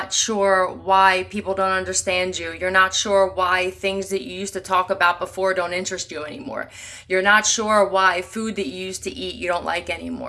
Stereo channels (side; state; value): both; identical; correlation 1.00